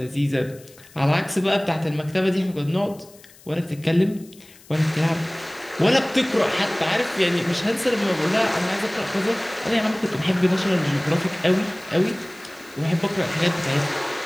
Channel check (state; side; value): noise; left; hiss, 24 dB below the sound